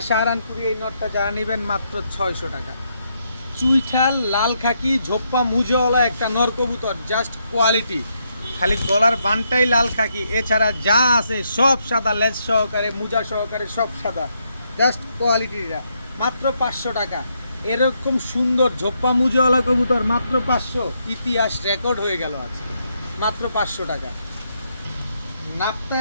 সাহারানপুরি এই নরটা যারা নেবেন মাত্র 600 টাকা। চুইঠাল লাল খাকি ঝোপ্পা মুজোওয়ালা একটা নর কবুতর, জাস্ট কোয়ালিটি। খালি গলার বানটাই লাল খাকি, এছাড়া যা আছে সব সাদা, লেজ সহকারে মুজা সহকারে সব সাদা। জাস্ট কোয়ালিটিটা মাত্র 500 টাকা। এরকম সুন্দর ঝোপ্পা মুজোওয়ালা কবুতর মাত্র 500, ইতিহাস রেকর্ড হয়ে গেল আজ, মাত্র 500 টাকা। নাপতা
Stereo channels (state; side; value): inverted; both; correlation -0.78